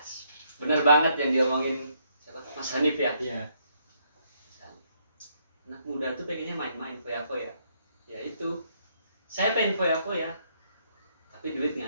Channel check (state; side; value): inverted; both; correlation -0.72